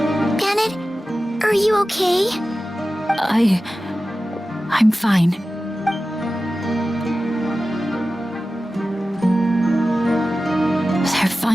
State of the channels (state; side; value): normal; both; correlation 0.95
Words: Bennett, are you okay? I'm fine. They're